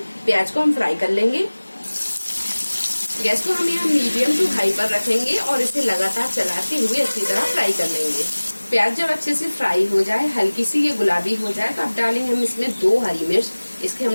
प्याज को हम फ्राई कर लेंगे। गैस को हम यहाँ मीडियम टू हाई पर रखेंगे और इसे लगातार चलाते हुए अच्छी तरह फ्राई कर लेंगे। प्याज जब अच्छे से फ्राई हो जाए, हल्की सी ये गुलाबी हो जाए, तो अब डालेंगे हम इसमें 2 हरी मिर्च। इसके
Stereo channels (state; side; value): inverted; both; correlation -1.00